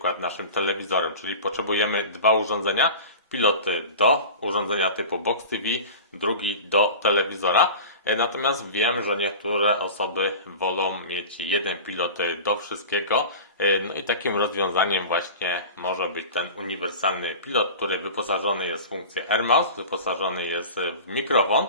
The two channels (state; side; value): inverted; both; correlation -0.34